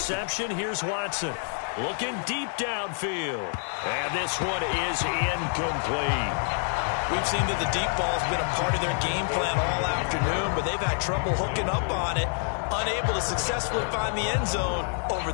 here's Watson. Looking deep downfield. And this one is incomplete. We've seen that the deep ball's been a part of their game plan all afternoon, but they've had trouble hooking up on it, unable to successfully find the end zone over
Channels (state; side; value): silent; right; 60 dB below the other